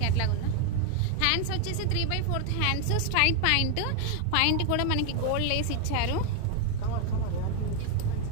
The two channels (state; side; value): different; both; correlation 0.00